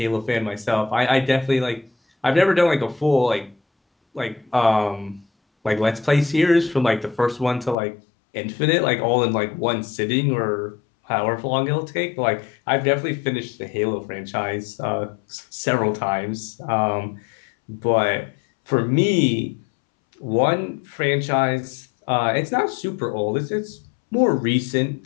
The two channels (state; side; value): drops out; right; at 7.8 s